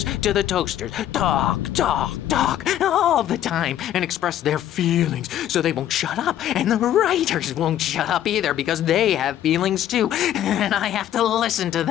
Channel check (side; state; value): right; quieter; 11.6 dB